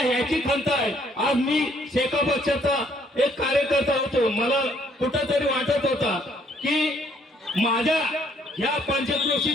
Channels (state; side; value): normal; both; correlation 0.66